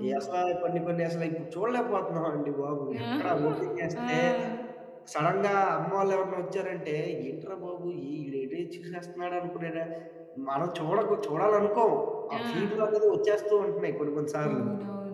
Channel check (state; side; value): identical; both; correlation 1.00